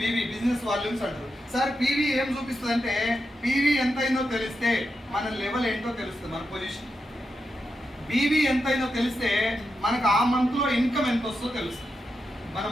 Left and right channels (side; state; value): both; normal; correlation 0.86